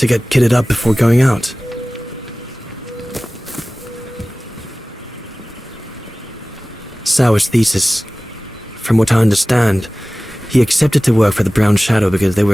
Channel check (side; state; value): both; normal; correlation 0.98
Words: get kitted up before going out. Sauer's thesis. From what I understand, he accepted to work for the Brown Shadow because they